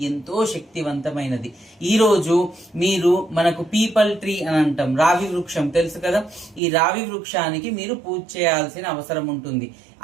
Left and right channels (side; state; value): left; drops out; at 6.6 s